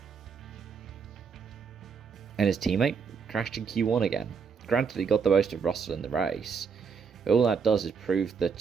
And his teammate crashed in Q1 again. Granted, he got the most of Russell in the race, but all that does is prove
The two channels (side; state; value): left; quieter; 5.9 dB